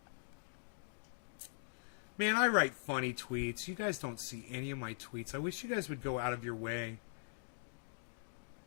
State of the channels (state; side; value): silent; right; digital silence